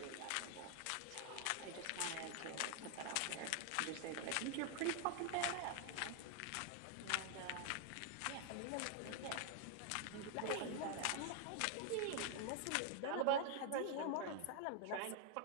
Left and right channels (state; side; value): different; both; correlation 0.00